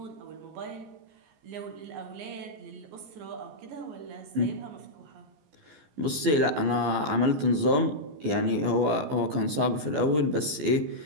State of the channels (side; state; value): left; late; 14 ms